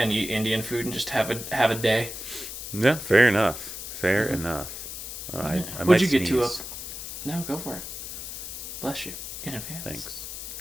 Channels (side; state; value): left; noise; hiss, 8 dB below the sound